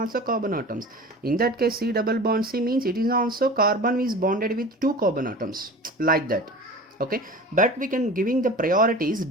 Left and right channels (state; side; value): normal; both; correlation 0.37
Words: carbon atoms. In that case C double bond C means it is also carbon is bonded with two carbon atoms, like that. Okay, but we can giving the priorities,